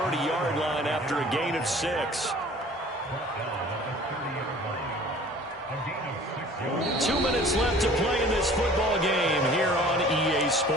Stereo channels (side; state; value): both; normal; correlation 0.48